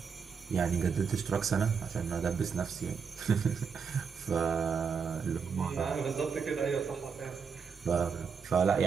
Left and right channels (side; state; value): left; quieter; 6.1 dB